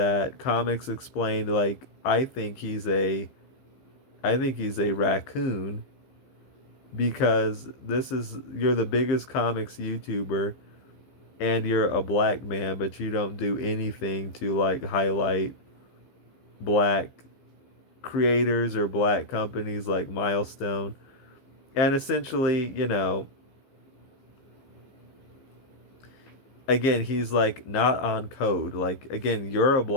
Comics Explained, like, I think he's a raccoon because you're the biggest comics YouTuber and you're a black man, but you don't do anything to like highlight black creators or black companies like Milestone. And essentially, again, he's like not on code. Like, again, you're a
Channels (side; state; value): right; late; 15 ms